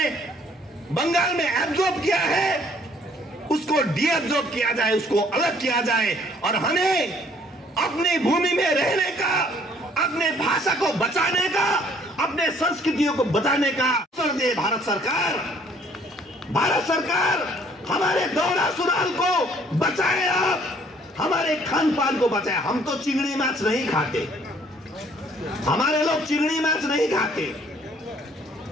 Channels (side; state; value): both; normal; correlation 0.60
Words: बंगाल में एब्जॉर्ब किया है, उसको डीएब्जॉर्ब किया जाए, उसको अलग किया जाए और हमें अपनी भूमि में रहने का, अपने भाषा को बचाने का, अपने संस्कृतियों को बचाने का अवसर दे भारत सरकार। भारत सरकार हमारे दोहरा सुराल को बचाए, आप हमारे खान पान को बचाए। हम तो चिंगड़ी माछ नहीं खाते, हमारे लोग चिंगड़ी माछ नहीं खाते।